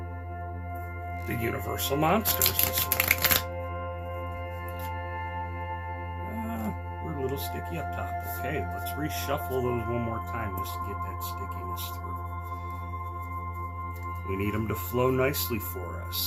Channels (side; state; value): both; identical; correlation 1.00